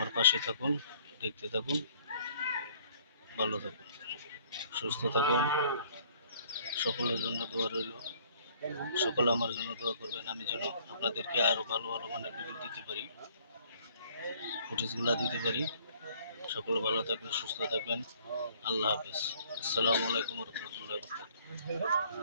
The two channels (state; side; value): inverted; both; correlation -0.59